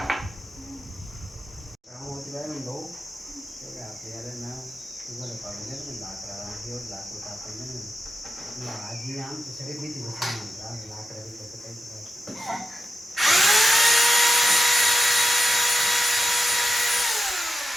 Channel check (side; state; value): both; normal; correlation 0.89